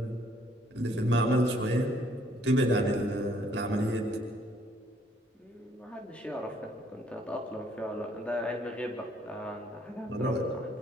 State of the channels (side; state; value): both; normal; correlation 0.65